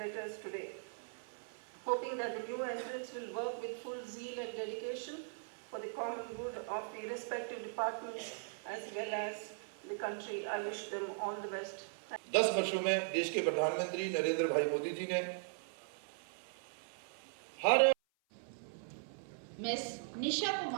today. Hoping that the new entrants will work with full zeal and dedication for the common good of the respective departments as well as the country. I wish them all the best. 10 वर्षों में देश के प्रधानमंत्री नरेंद्र भाई मोदी जी ने हर Miss Nisha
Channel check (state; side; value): silent; left; 52 dB below the other